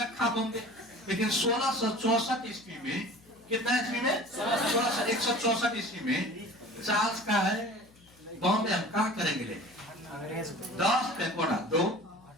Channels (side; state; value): left; noise; hum, 28 dB below the sound